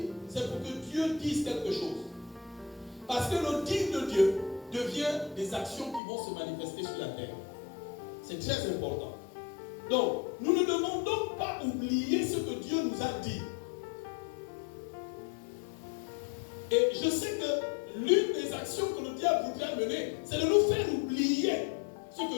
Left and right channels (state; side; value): drops out; right; at 6.0 s